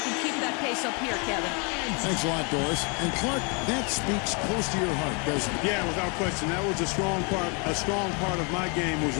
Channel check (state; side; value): quieter; right; 34.0 dB